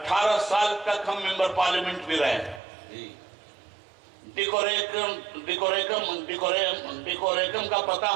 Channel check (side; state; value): left; drops out; at 2.6 s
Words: سال تک ہم ممبر پارلیمنٹ بھی رہے. ڈیکوریکم کا پتہ